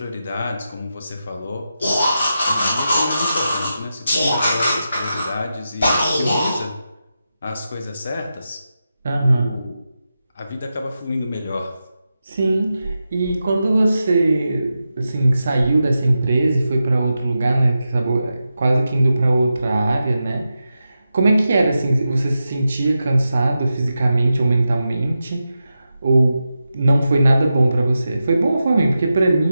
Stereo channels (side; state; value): both; inverted; correlation -0.90